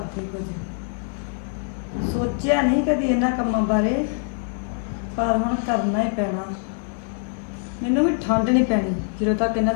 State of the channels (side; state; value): right; silent; 57 dB below the other